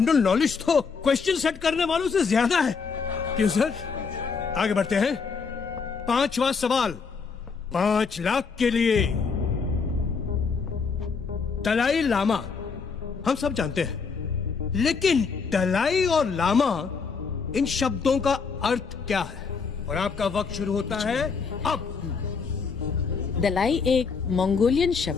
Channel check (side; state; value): right; quieter; 5.3 dB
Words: नॉलेज तो क्वेश्चन सेट करने वालों से ज्यादा है। क्यों सर? आगे बढ़ते हैं। 5वां सवाल 5 लाख के लिए। दलाई लामा हम सब जानते हैं, लेकिन दलाई और लामा इन शब्दों का अर्थ क्या है? और आपका वक्त शुरू होता है अब। दलाई एक मंगोलियन